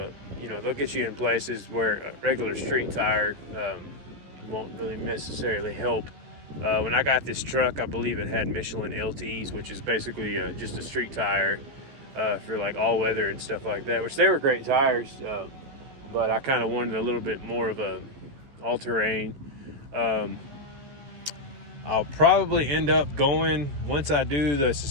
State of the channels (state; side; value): late; left; 14 ms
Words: get you in places where a regular street tire won't really necessarily help. When I got this truck, I believe it had Michelin LTs, which is basically just a street tire for like all weather and stuff like that, which they were great tires, but I kind of wanted a little bit more of a all-terrain. I'll probably end up going, once I do the